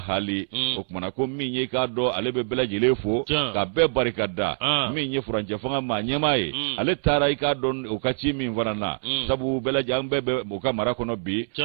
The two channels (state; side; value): silent; left; 62 dB below the other